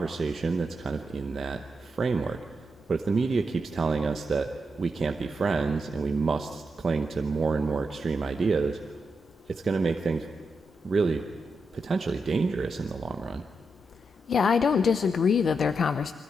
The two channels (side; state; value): both; normal; correlation 0.84